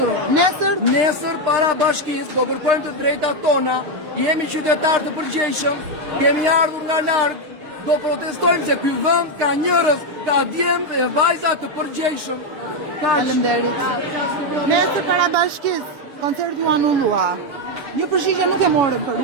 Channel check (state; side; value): late; left; 6.6 ms